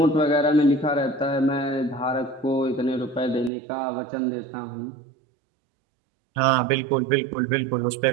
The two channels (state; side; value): drops out; left; at 3.5 s